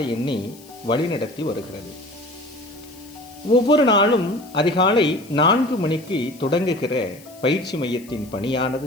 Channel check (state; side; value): noise; left; hiss, 23 dB below the sound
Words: எண்ணி வழிநடத்தி வருகிறது. ஒவ்வொரு நாளும் அதிகாலை 4 மணிக்கு தொடங்குகிற பயிற்சி மையத்தின்